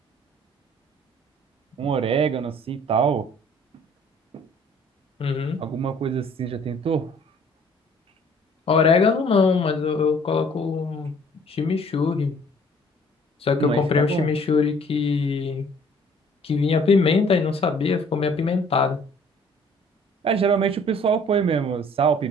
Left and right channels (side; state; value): both; normal; correlation 0.56